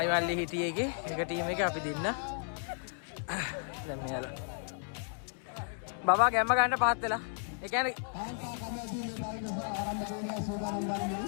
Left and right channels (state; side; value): silent; right; 55 dB below the other